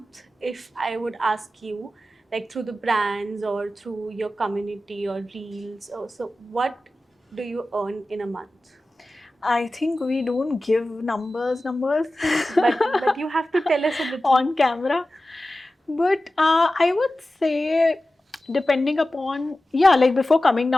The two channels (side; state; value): both; normal; correlation 0.95